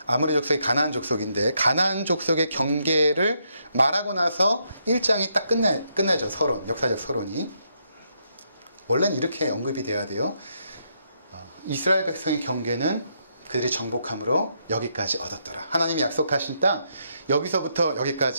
아모리 족속이 가나안 족속인데 가나안 족속의 경계를 말하고 나서 1장이 딱 끝나죠. 서론, 역사적 서론이. 원래는 이렇게 언급이 돼야 돼요. 이스라엘 백성의 경계는 그들이 정복함으로 여기까지 얻었더라. 하나님이 약속하신 땅 여기서부터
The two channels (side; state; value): both; inverted; correlation -0.77